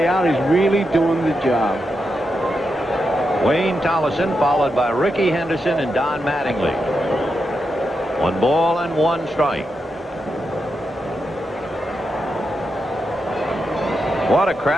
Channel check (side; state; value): both; normal; correlation 0.86